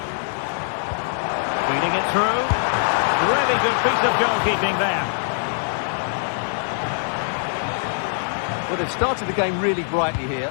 Feeding it through. Really good piece of goalkeeping there. Well, they've started the game really brightly here,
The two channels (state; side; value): silent; right; 57 dB below the other